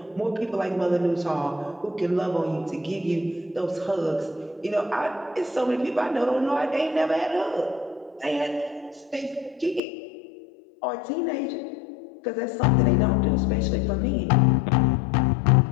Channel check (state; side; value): drops out; right; at 9.8 s